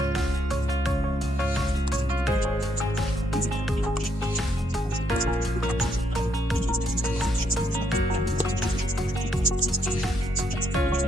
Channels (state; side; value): normal; both; correlation 0.75